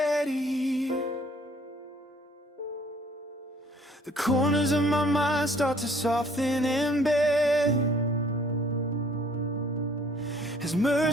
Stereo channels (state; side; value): normal; both; correlation 0.57